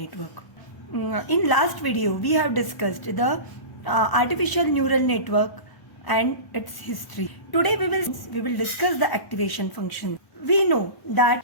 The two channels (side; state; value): right; late; 1.0 ms